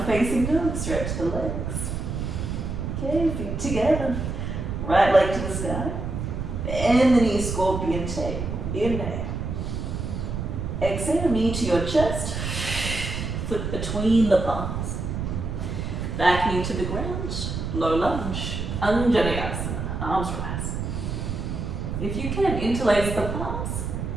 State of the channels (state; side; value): noise; right; rumble, 4 dB below the sound